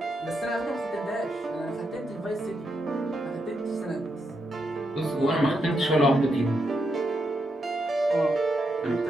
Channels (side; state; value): both; normal; correlation 0.82